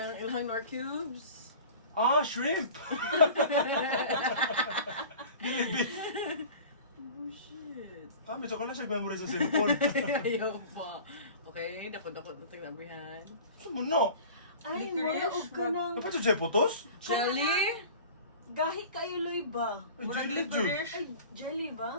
ilang Nor Cubes? Ah, shrimp! Dili beef. Oh, shit. Ah, medyo ka na siya memory sa cellphone. Ayaw pa. Okay, dako-dako na taglabihan. Sumuno. Ay, mura og ka ng... Dapat siya putos? Jelly? Gahi kayo, Loy ba? Ay, Murag jelly licorice. Ay, jelly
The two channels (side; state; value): both; inverted; correlation -0.41